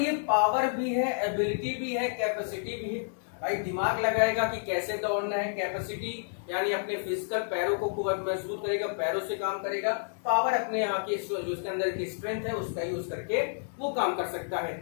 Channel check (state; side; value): silent; right; digital silence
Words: पावर भी है, एबिलिटी भी है, कैपेसिटी भी है। भाई दिमाग लगाएगा कि कैसे दौड़ना है। कैपेसिटी यानी अपने फिजिकल पैरों को खूब मजबूत करेगा, पैरों से काम करेगा। पावर अपने यहाँ की जो उसके अंदर की स्ट्रेंथ है उसका यूज करके वो काम कर सकता है।